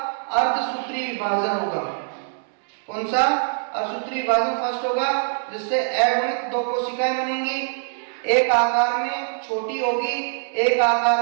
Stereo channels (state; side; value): silent; left; digital silence